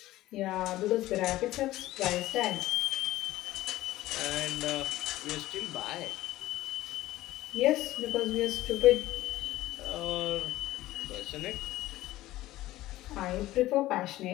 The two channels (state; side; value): quieter; right; 16.2 dB